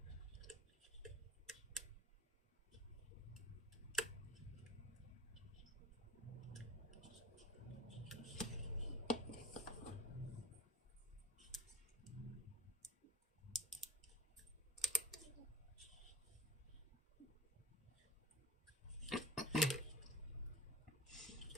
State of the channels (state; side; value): normal; both; correlation 0.39